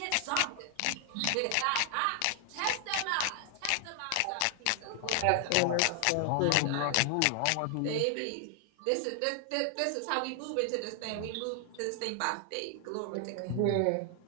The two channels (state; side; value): different; both; correlation 0.00